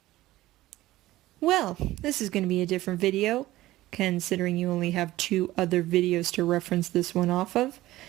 Well, this is going to be a different video, considering you only have two other videos to reference this one off of.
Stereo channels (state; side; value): quieter; left; 16.5 dB